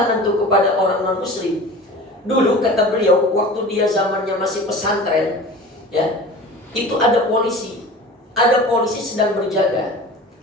tuh kepada orang non muslim. Dulu kata beliau, waktu dia zamannya masih pesantren, ya, itu ada polisi sedang berjaga.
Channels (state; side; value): normal; both; correlation 0.38